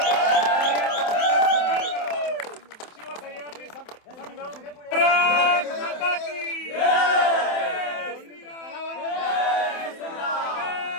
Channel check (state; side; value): late; right; 27 ms